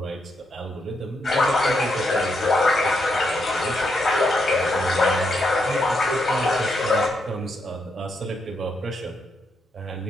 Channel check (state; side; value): normal; both; correlation 0.80